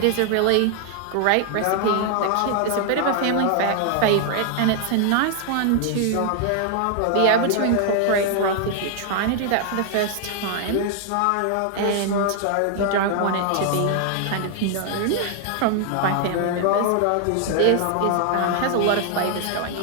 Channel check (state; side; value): different; both; correlation 0.00